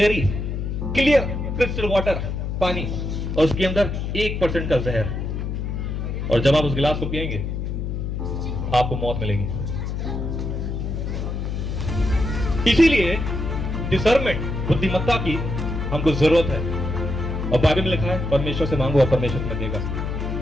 clear crystal water, पानी, और उसके अंदर 1% का जहर, और जब आप उस गिलास को पिएंगे आपको मौत मिलेगी। इसीलिए डिसर्नमेंट, बुद्धिमत्ता की हमको जरूरत है। और बाइबल में लिखा है परमेश्वर से मांगो और परमेश्वर तुम्हें देगा।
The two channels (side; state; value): left; noise; hum, 3 dB below the sound